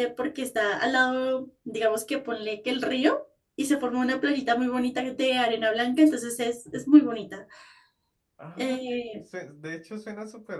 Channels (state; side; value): identical; both; correlation 1.00